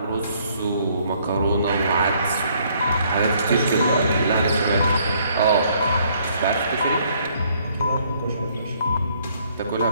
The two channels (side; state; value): both; inverted; correlation -0.66